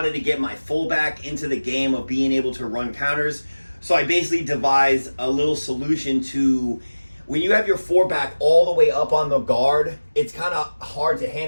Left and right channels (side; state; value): both; inverted; correlation -1.00